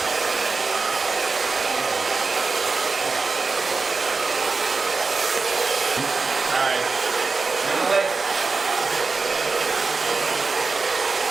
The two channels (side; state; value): left; quieter; 4.3 dB